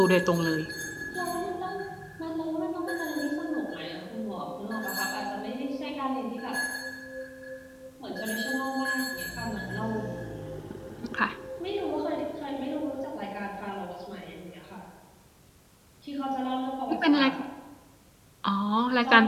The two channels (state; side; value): identical; both; correlation 1.00